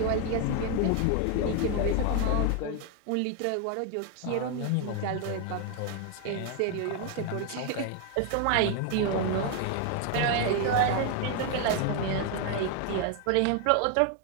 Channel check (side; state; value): both; different; correlation 0.01